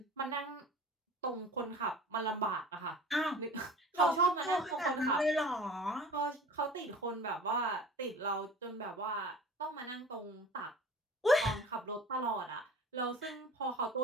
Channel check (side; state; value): both; normal; correlation 0.41